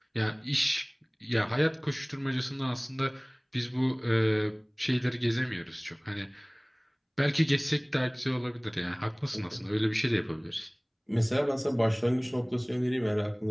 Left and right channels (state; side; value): identical; both; correlation 1.00